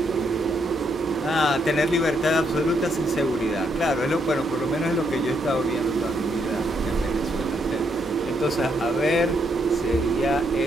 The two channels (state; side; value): normal; both; correlation 0.75